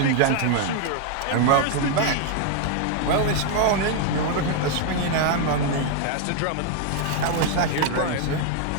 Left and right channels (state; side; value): different; both; correlation 0.00